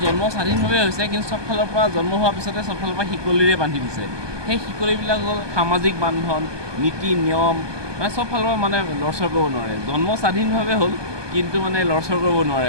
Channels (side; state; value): left; late; 1.2 ms